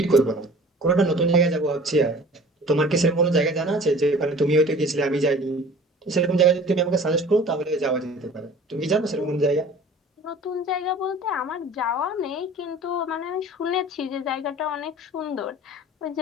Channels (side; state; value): both; normal; correlation 0.45